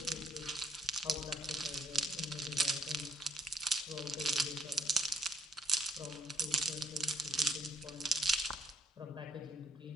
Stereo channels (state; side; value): normal; both; correlation 0.67